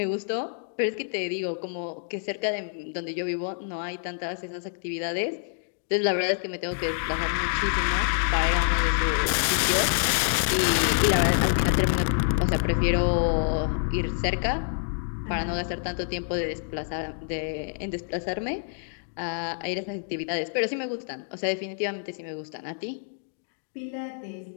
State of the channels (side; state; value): right; silent; digital silence